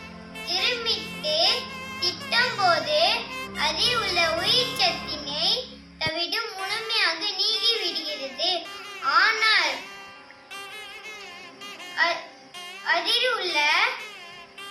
இருமிட்டு திட்டும் போது அதில் உள்ள உயிர் சத்தினை தவிடு முழுமையாக நீங்கிவிடுகிறது. ஆனால் அதில் உள்ள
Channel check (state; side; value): identical; both; correlation 1.00